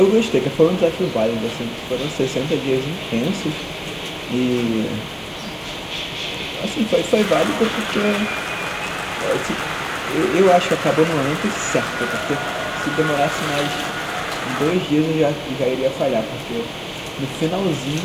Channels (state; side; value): identical; both; correlation 1.00